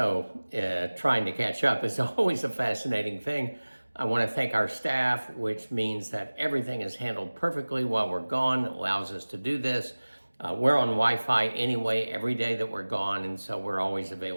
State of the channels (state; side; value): inverted; both; correlation -1.00